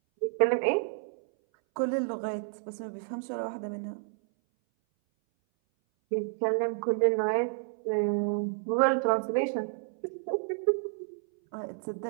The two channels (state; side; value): silent; left; 58 dB below the other